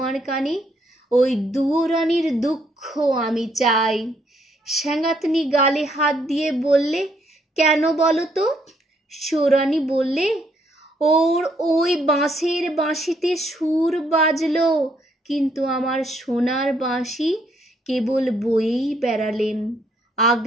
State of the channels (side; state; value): both; normal; correlation 0.71